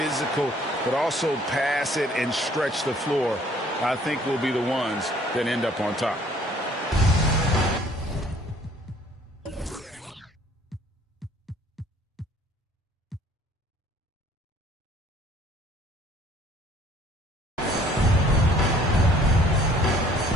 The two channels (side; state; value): both; normal; correlation 0.57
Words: but also pass it and stretch the floor, I think will be the ones that end up on top.